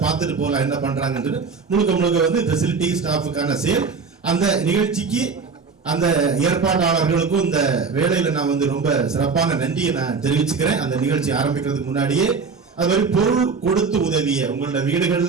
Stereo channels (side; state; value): left; quieter; 5.1 dB